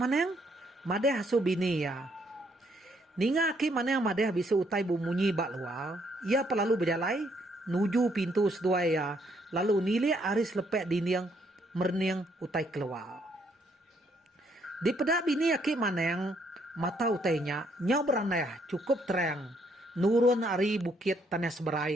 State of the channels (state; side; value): normal; both; correlation 0.70